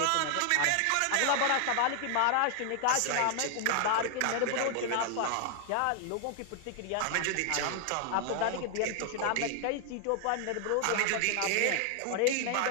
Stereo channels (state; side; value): different; both; correlation 0.00